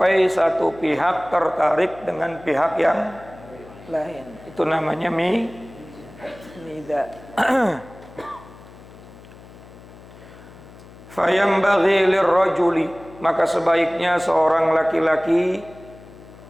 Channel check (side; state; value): left; noise; hum, 20 dB below the sound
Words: satu pihak tertarik dengan pihak yang lain. Itu namanya midha. Fayambaghi lirrajuli, maka sebaiknya seorang laki-laki